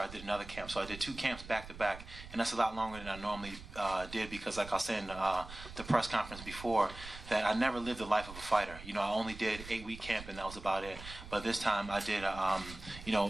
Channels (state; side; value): noise; right; rumble, 14 dB below the sound